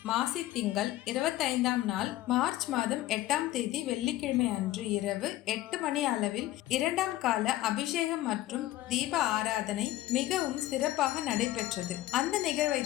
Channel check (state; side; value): quieter; right; 15.6 dB